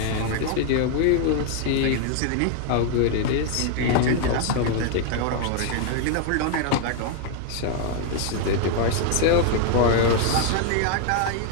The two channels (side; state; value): both; different; correlation 0.00